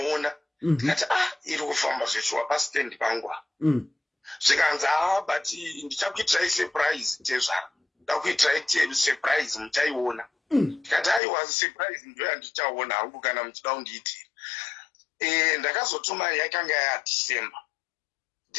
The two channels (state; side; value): drops out; right; at 11.2 s